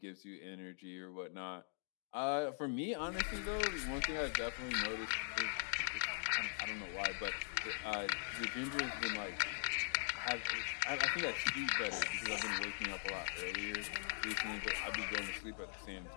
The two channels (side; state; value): right; silent; digital silence